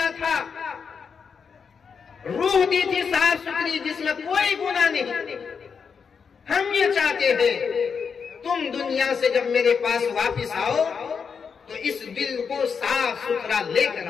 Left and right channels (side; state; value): right; quieter; 6.1 dB